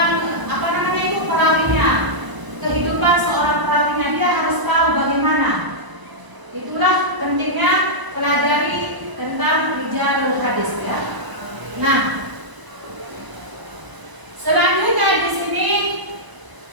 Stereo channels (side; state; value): left; late; 1.0 ms